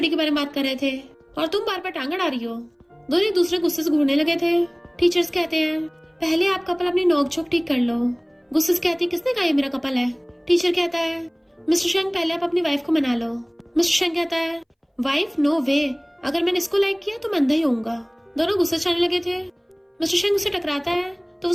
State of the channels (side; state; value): both; identical; correlation 1.00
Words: के बारे में बात कर रहे थे और तुम बार बार टांग अड़ा रही हो। दोनों एक दूसरे गुस्से से घूरने लगे थे। टीचर्स कहते हैं पहले आप कपल अपनी नोक झोंक ठीक कर लो। गुस्से से कहती किसने कहा ये मेरा कपल है। टीचर कहता है मिस्टर शेंग पहले आप अपनी वाइफ को मना लो। मिस्टर शेंग कहता है वाइफ नो वे, अगर मैंने इसको लाइक किया तो मैं अंधा ही होऊंगा। दोनों गुस्से से आने लगे थे। मिस्टर शेंग उससे टकराता है तो